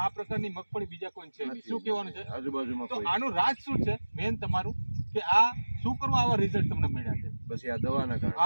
પ્રકારની મગફળી બીજા કોઈ છે નહીં। શું કહેવાનું છે આજુબાજુમાં? તો આનું રાજ શું છે મેન તમારું, કે આ શું કરવા આવા રિઝલ્ટ તમને મળ્યા છે? બસ આ દવાના કારણે।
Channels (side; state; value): both; inverted; correlation -1.00